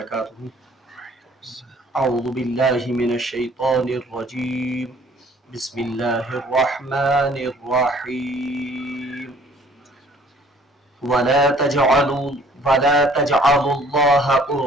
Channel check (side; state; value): both; normal; correlation 0.56